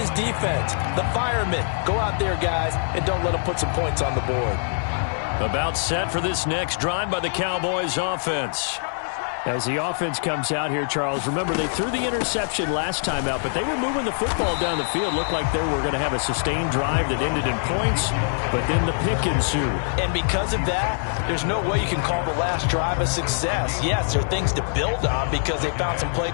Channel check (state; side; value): silent; right; digital silence